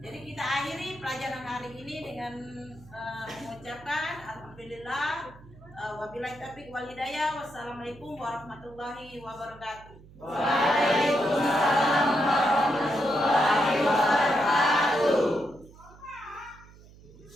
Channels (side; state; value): right; noise; hum, 22 dB below the sound